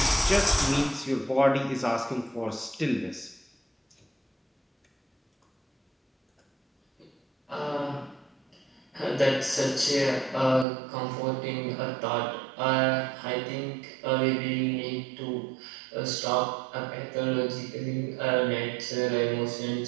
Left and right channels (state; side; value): drops out; left; at 10.7 s